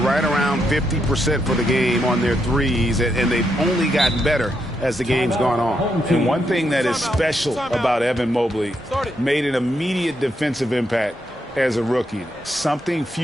around 50% for the game on their threes. And they've only gotten better as the game's gone on. And one thing that is special about Evan Mobley, made an immediate defensive impact as a rookie. Something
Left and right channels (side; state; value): both; normal; correlation 0.80